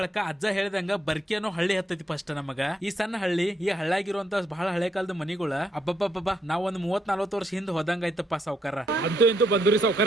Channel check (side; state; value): both; normal; correlation 0.76